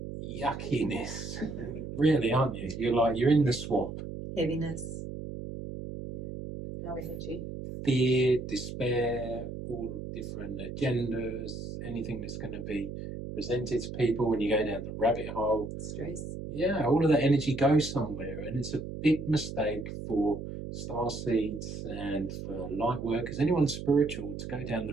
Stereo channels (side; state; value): right; noise; hum, 8 dB below the sound